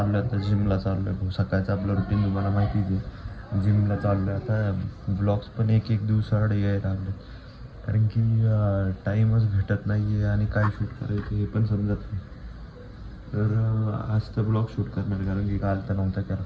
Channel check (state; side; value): identical; both; correlation 1.00